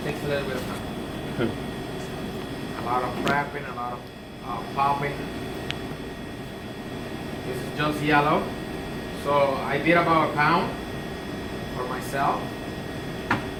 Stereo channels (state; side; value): identical; both; correlation 1.00